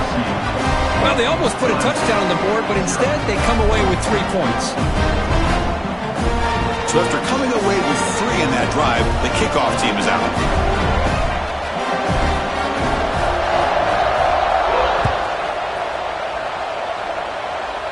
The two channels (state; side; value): identical; both; correlation 1.00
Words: Well, they almost put a touchdown on the board, but instead they come away with 3 points. So after coming away with 3 in that drive, the kickoff team is out.